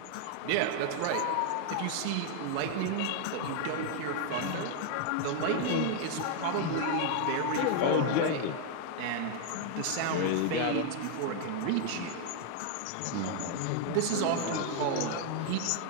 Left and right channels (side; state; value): both; different; correlation 0.00